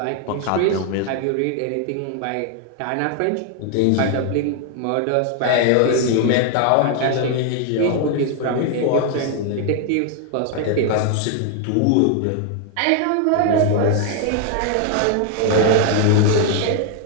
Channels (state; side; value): different; both; correlation 0.00